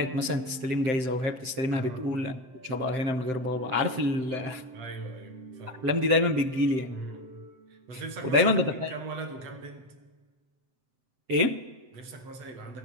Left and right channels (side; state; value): left; late; 7.8 ms